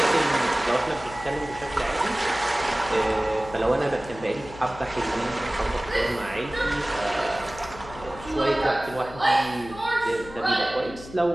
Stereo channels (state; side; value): noise; left; hum, 16 dB below the sound